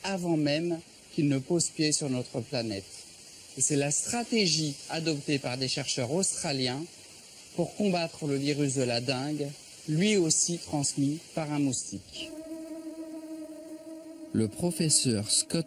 avant même qu'ils ne posent pied sur notre planète. Et c'est la stratégie adoptée par des chercheurs australiens pour combattre le virus de la dengue, lui aussi transmis par un moustique. Le professeur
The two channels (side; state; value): both; identical; correlation 1.00